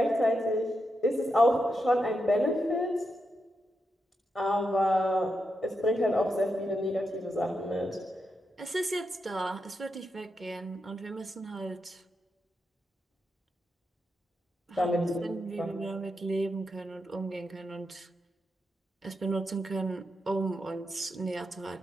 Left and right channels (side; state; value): both; normal; correlation 0.85